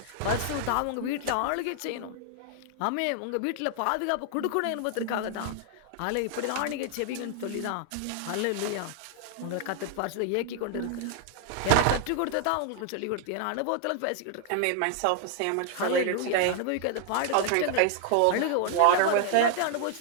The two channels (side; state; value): both; different; correlation 0.00